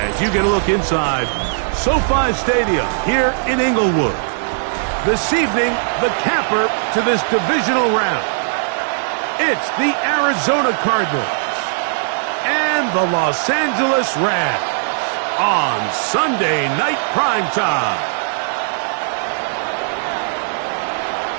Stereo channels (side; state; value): left; silent; 67 dB below the other